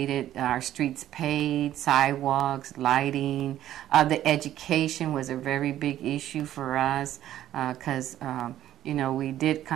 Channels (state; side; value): quieter; left; 12.4 dB